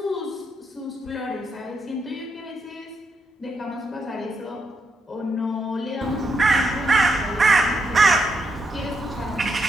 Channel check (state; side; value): normal; both; correlation 0.80